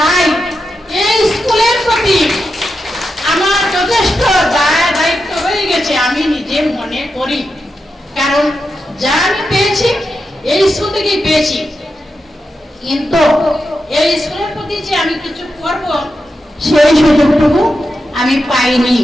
এই স্কুলের প্রতি আমার যথেষ্ট দায়িত্ব হয়ে গেছে আমি নিজে মনে করি, কারণ যা আমি পেয়েছি এই স্কুল থেকেই পেয়েছি। কিন্তু এই স্কুলের প্রতি যে আমি কিছু করব সেই সুযোগটুকু আমি পাইনি।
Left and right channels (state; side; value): normal; both; correlation 0.88